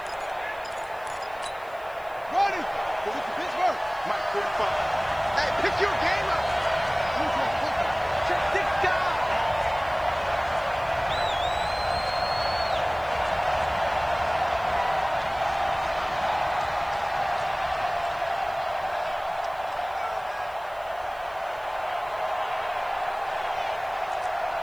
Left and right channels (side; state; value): right; noise; hiss, 27 dB below the sound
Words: Ronnie, go with the Pittsburgh. Mike 45. Hey, pick your game up. Check this guy.